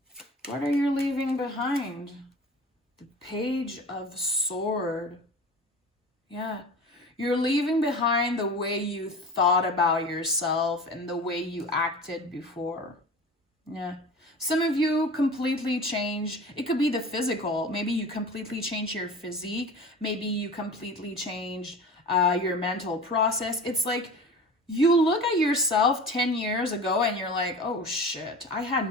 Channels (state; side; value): normal; both; correlation 0.36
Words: What are you leaving behind? The Page of Swords. Yeah. You're leaving behind the way you thought about yourself and the way you acted before. Yeah. Some of you completely change. It could be the physical. Maybe you completely change your physique. Maybe you completely change your mental process. It's like you look at yourself 10 years ago and you're like, oh shit, I